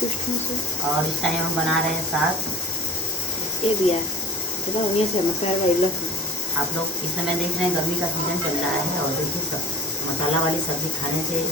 और इस टाइम हम बना रहे हैं साग। आप लोग इस समय देख रहे हैं गर्मी का सीजन चल रहा है और देखिए सब मसाला वाली सब्जी खाने से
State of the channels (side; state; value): both; normal; correlation 0.39